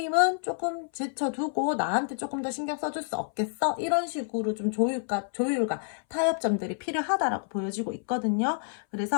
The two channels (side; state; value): right; silent; 58 dB below the other